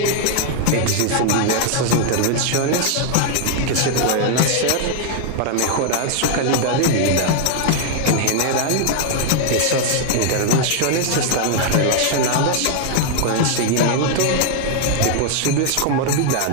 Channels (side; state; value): both; different; correlation 0.00